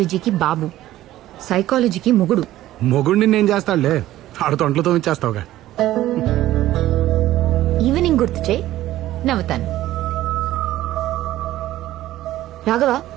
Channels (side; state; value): left; quieter; 14.6 dB